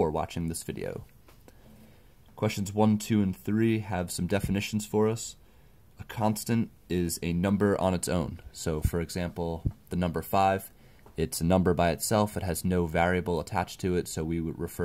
watching this video. Questions 1, 2, and 3 have some definitions for us. A constant is a number on its own. So for example, the number 5, it's a number by itself. It has no variable attached to it, so we would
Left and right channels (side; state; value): both; identical; correlation 1.00